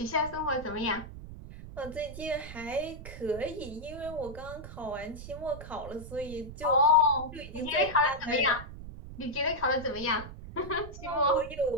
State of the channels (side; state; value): right; noise; rumble, 12 dB below the sound